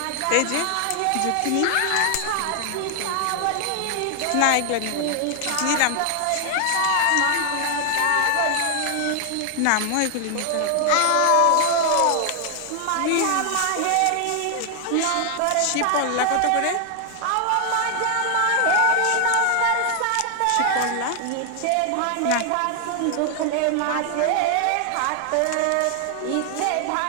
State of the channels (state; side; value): different; both; correlation 0.00